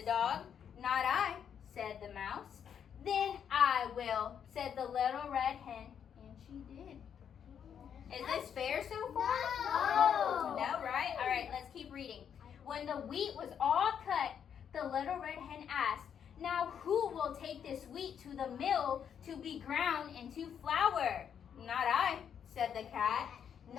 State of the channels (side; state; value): right; quieter; 8.2 dB